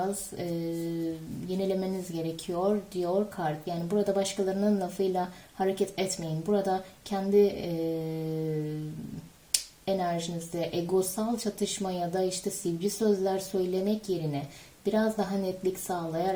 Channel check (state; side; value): identical; both; correlation 1.00